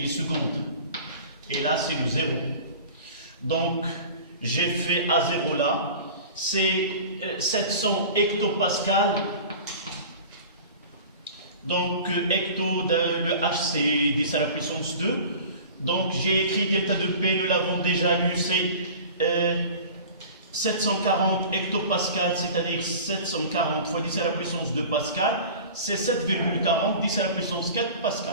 et là c'est le 0. Donc j'ai fait A0 là, c'est 700 hectopascales. Donc hecto, le H c'est 10 à la puissance 2. Donc j'ai écrit delta de P, nous l'avons déjà lu, c'est 740 hectopascales, c'est-à-dire 740 fois 10 à la puissance 2 pascal, c'est 7,40, 10 à la puissance 4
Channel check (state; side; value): inverted; both; correlation -0.40